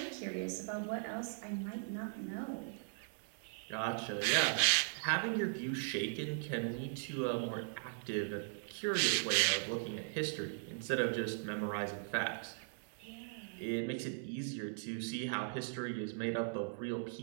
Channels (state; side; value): silent; left; 52 dB below the other